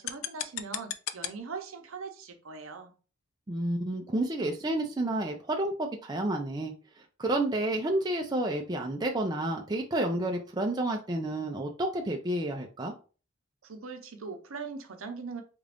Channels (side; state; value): both; normal; correlation 0.50